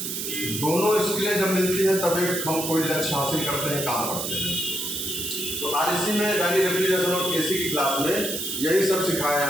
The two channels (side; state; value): right; noise; hiss, 4 dB below the sound